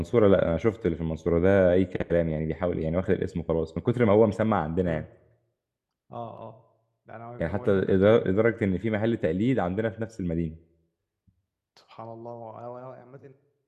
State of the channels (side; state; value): both; identical; correlation 1.00